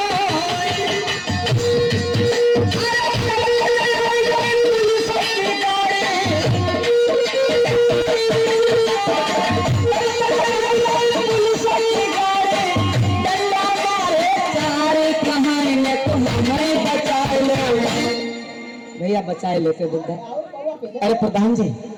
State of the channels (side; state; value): both; identical; correlation 1.00